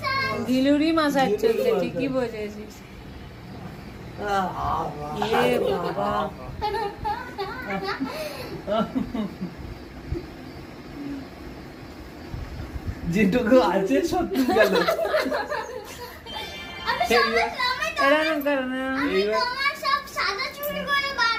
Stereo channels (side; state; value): both; identical; correlation 1.00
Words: ঘিলুরি মাসাজ চলছে, ঠিকই বুঝেছিস। এ বাবা, যেটুকু আছে সত্যি গেল। এরকম করো না।